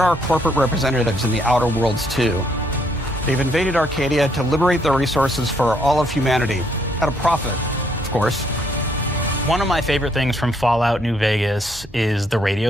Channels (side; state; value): both; normal; correlation 0.70